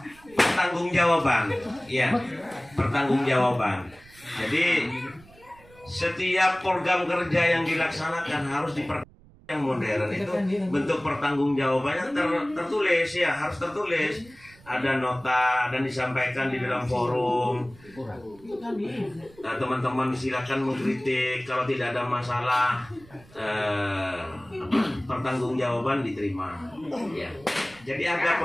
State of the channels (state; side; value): noise; right; rumble, 25 dB below the sound